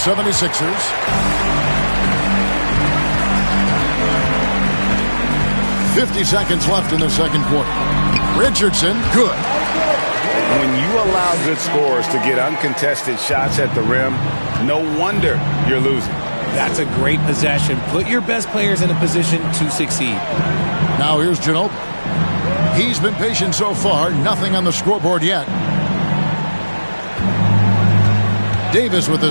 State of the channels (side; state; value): both; inverted; correlation -1.00